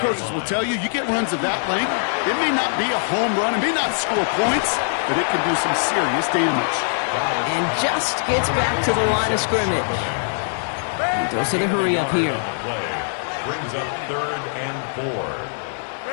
coaches will tell you, you get runs of that length, it may not be a home run, it may not score points, but it can do some serious damage. And just gets back to the line of scrimmage. He goes to the hurry up here. Brings up 3rd and 4.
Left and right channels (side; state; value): right; silent; digital silence